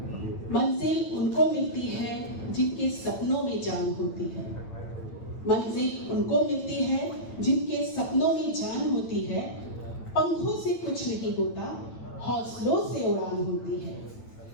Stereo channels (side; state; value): right; late; 9.0 ms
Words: मंजिल उनको मिलती है जिनके सपनों में जान होती है। मंजिल उनको मिलती है जिनके सपनों में जान होती है। पंखों से कुछ नहीं होता, हौसलों से उड़ान होती है।